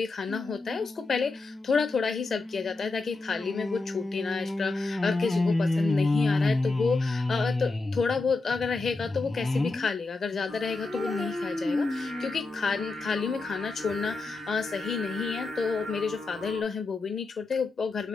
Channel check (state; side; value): quieter; right; 3.6 dB